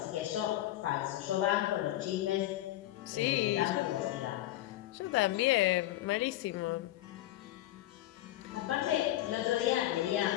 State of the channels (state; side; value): quieter; right; 15.1 dB